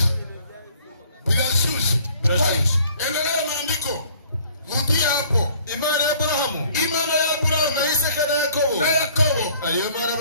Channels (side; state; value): both; inverted; correlation -0.56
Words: Birashushe endelea maandiko rudia hapo Imana ya Aburahamu Imana ya Aburahamu na Isaka na Yakobo. na Yakobo Ariyo mana